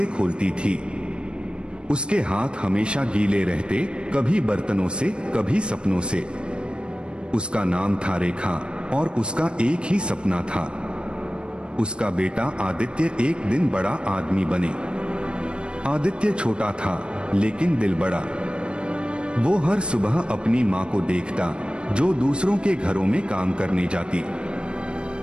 खोलती थी। उसके हाथ हमेशा गीले रहते, कभी बर्तनों से, कभी सपनों से। उसका नाम था रेखा और उसका एक ही सपना था, उसका बेटा आदित्य एक दिन बड़ा आदमी बने। आदित्य छोटा था लेकिन दिल बड़ा। वो हर सुबह अपनी माँ को देखता जो दूसरों के घरों में काम करने जाती,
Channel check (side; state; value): left; late; 0.055 ms